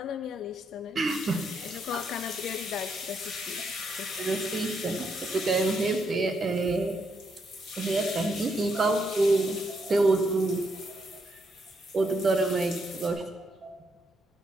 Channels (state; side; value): normal; both; correlation 0.77